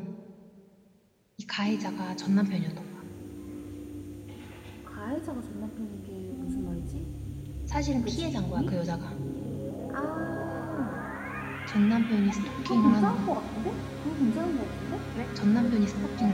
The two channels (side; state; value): both; identical; correlation 1.00